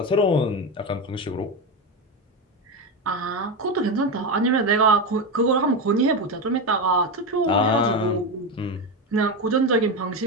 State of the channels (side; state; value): both; normal; correlation 0.15